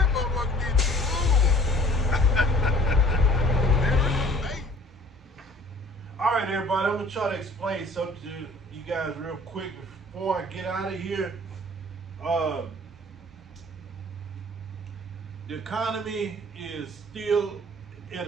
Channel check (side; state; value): both; normal; correlation 0.51